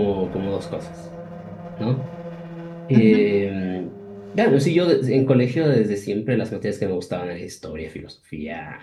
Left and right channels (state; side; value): identical; both; correlation 1.00